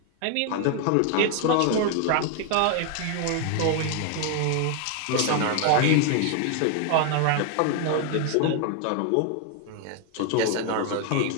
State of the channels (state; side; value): different; both; correlation 0.01